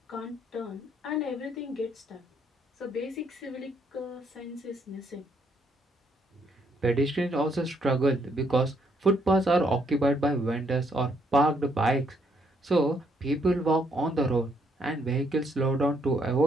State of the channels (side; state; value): both; normal; correlation 0.71